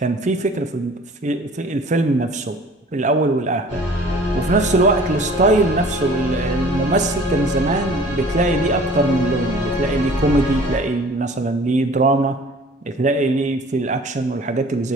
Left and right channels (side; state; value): both; normal; correlation 0.48